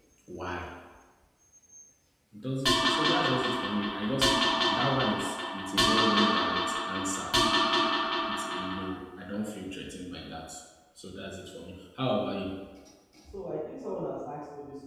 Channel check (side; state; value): both; identical; correlation 1.00